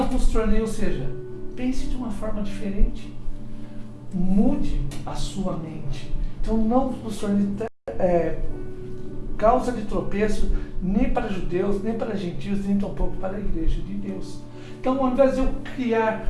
vos tornei, ou seja, pense de uma forma diferente. Mude a sua mente. Então, não vos tornei causa de tropeço nem para judeus, nem para gentios, nem tampouco para a igreja de Deus. Então, ao invés de eu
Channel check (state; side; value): identical; both; correlation 1.00